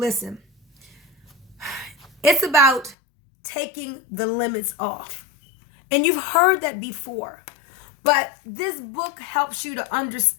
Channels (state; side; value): drops out; right; at 3.0 s